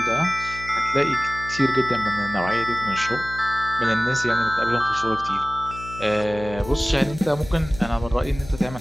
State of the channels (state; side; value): noise; left; hum, 14 dB below the sound